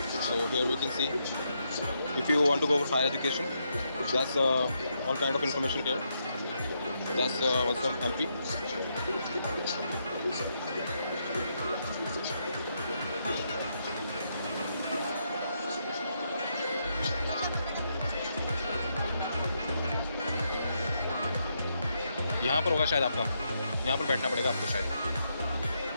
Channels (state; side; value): inverted; both; correlation -0.79